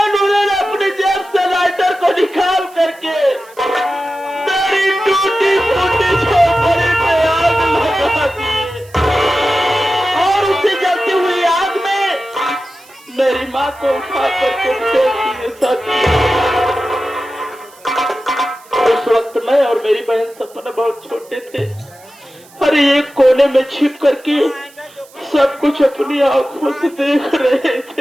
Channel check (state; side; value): noise; right; hiss, 25 dB below the sound